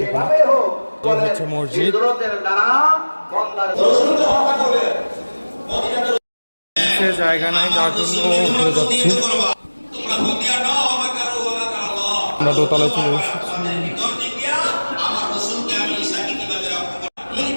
এখানে। এই হচ্ছে মসজিদ। জায়গা নাই, যার জন্য ঘুরে যাচ্ছি। আমরা দোতলায় চলে এসেছি।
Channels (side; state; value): both; inverted; correlation -1.00